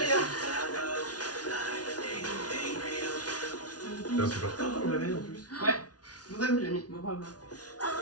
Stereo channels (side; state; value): right; late; 0.69 ms